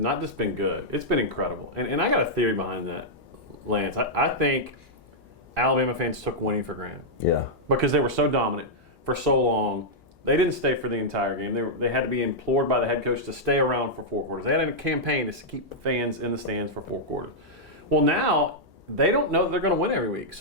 just been good, it's been incredible. And I got a theory behind that, Lance. I think Alabama fans took winning for granted. Yeah. Because they were so dominant for so long. They didn't stay for the entire game. They had to be implored by the head coach to stay around for 4 quarters. They had a campaign to keep the fans in the stands for 4 quarters. Well, now they don't know that they're going to win every week.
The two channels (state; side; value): normal; both; correlation -0.07